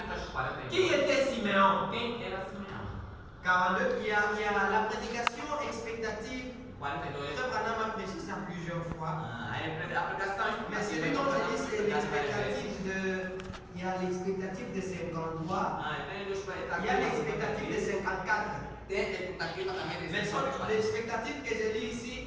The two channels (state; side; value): identical; both; correlation 1.00